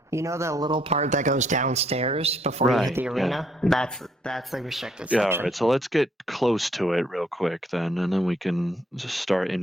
You know the little part that goes downstairs before you hit the arena? Yeah. That's the restricted section. Yeah, all right. So let's get close to it real quick then, and then we can just start in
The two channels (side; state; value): both; normal; correlation 0.69